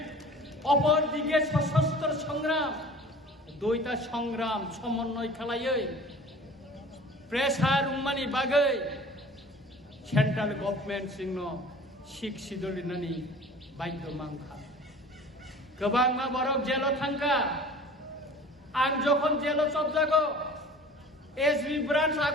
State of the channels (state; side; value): normal; both; correlation 0.44